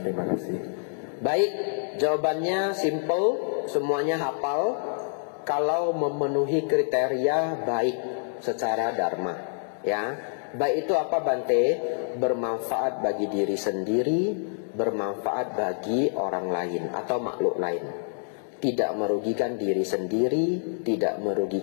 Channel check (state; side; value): silent; right; digital silence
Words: kasih. Baik, jawabannya simple, semuanya hafal. Kalau memenuhi kriteria baik secara dharma, ya. Baik itu apa Bante? Bermanfaat bagi diri sendiri, bermanfaat bagi orang lain atau makhluk lain. Tidak merugikan diri sendiri, tidak